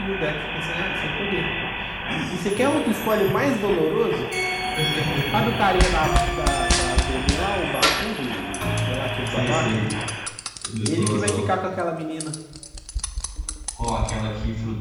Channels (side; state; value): both; identical; correlation 1.00